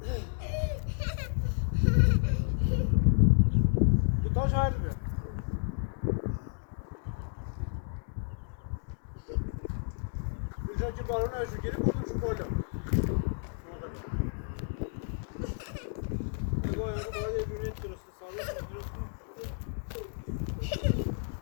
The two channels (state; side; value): silent; right; digital silence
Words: دوتا شاید بیا بیشتر که بارون هشو گیری بردم شو بالا نگاه باید یه دونه درست ثابت